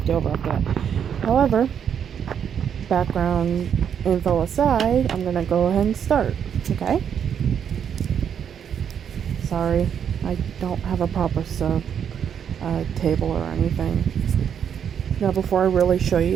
over after that. However, background info aside, I'm gonna go ahead and start. Okay? Sorry, I don't have a proper table or anything. Now, before I really show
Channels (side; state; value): left; quieter; 8.2 dB